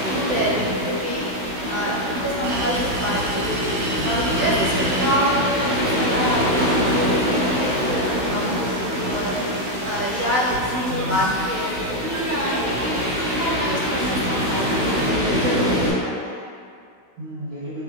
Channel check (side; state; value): left; late; 16 ms